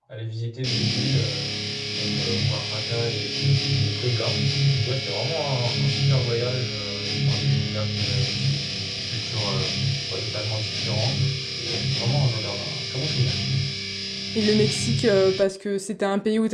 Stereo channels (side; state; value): both; identical; correlation 1.00